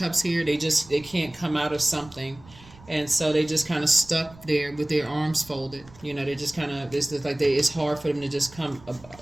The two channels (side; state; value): right; noise; rumble, 22 dB below the sound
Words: here. They can't come out of something, and so they just kind of stuck there with their arms folded. You know, they just kind of it's just like it's hard for them to just come,